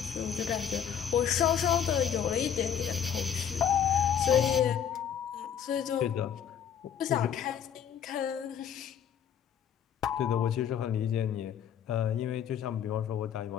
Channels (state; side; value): quieter; right; 8.5 dB